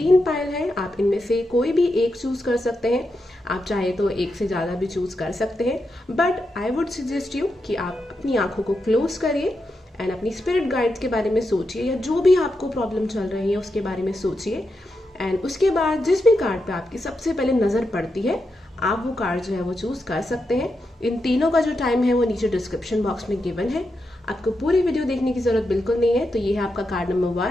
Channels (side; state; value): both; normal; correlation 0.86